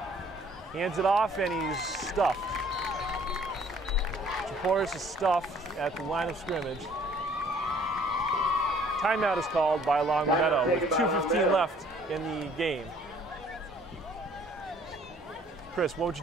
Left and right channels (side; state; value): both; normal; correlation 0.57